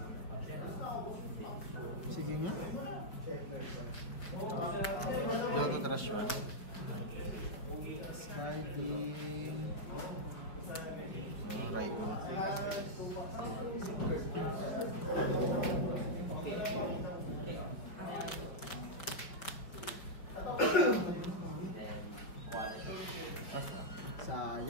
Sige nga. Logo trash one. Skyding. Raigo.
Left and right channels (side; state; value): right; late; 5.4 ms